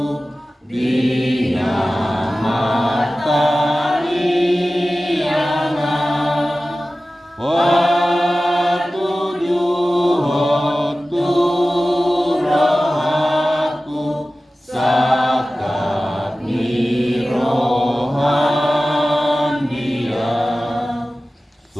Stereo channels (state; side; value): normal; both; correlation 0.96